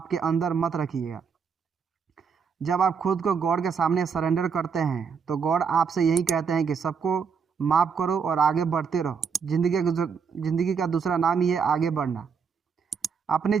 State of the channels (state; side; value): quieter; left; 6.2 dB